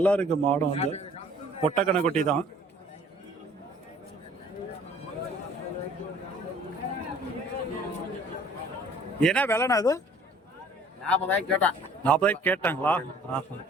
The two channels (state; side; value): normal; both; correlation 0.54